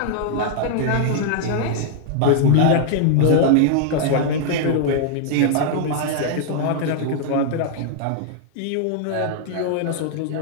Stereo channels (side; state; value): both; different; correlation -0.01